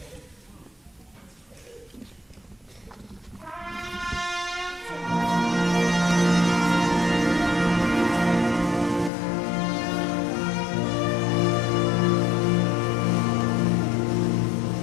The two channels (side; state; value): right; drops out; at 9.1 s